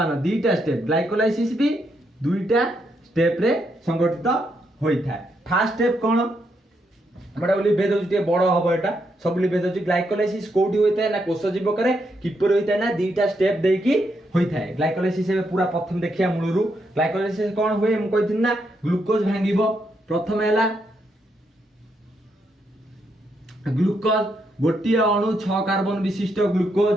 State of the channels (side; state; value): both; normal; correlation 0.79